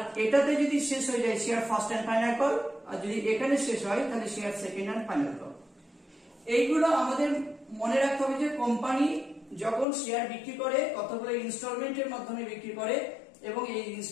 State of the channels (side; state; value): right; drops out; at 9.9 s